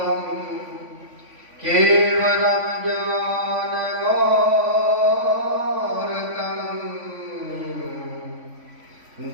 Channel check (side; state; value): left; late; 3.5 ms